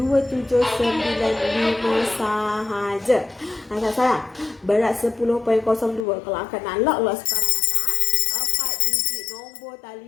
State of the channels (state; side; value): drops out; right; at 6.1 s